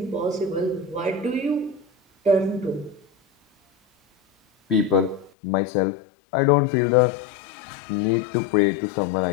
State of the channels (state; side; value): drops out; right; at 5.3 s